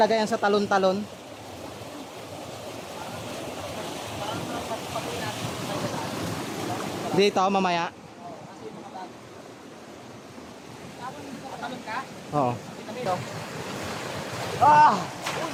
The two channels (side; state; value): both; identical; correlation 1.00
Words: yan sa talon-talon. Dito mamaya. Oo. Ah!